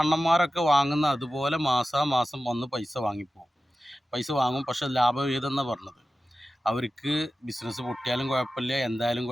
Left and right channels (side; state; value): both; normal; correlation 0.94